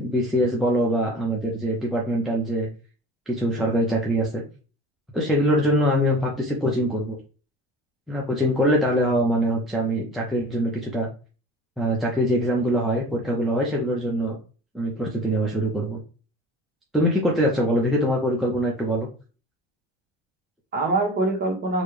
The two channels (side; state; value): both; normal; correlation 0.40